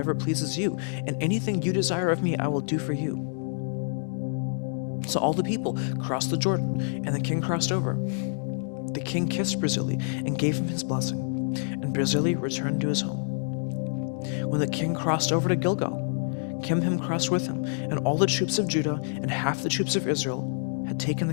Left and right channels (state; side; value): silent; right; digital silence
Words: pleases you, and anything you desire of me I will do for you." So all the people crossed the Jordan, and the king crossed over. The king kissed Barzillai and gave him his blessing, and Barzillai returned to his home. When the king crossed over to Gilgal, Kimham crossed with him, and all the troops of Judah and half the troops of Israel had taken